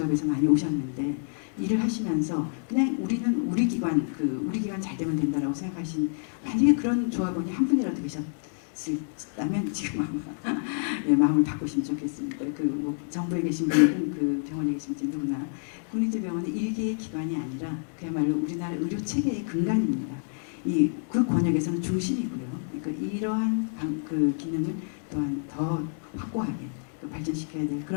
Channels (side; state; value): right; silent; digital silence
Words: 많이 오셨는데 일을 하시면서 그냥 우리는 우리 기관 우리 기관 잘 되면 된다라고 생각하신 만약에 그런 조합원이 한 분이라도 계셨다면 지금 아마 예, 마음을 바꾸시면 좋겠습니다. 뭐 정부에 계신 분들은 그 병원에 계신 분들 누구나 국립대병원은 일개의 기관이 아니라 그야말로 우리나라 의료 체계의 근간입니다. 그 권역에서는 중심이고요. 그러니까 이러한 그 기능을 또한 더 확고하게 발전시켜야 될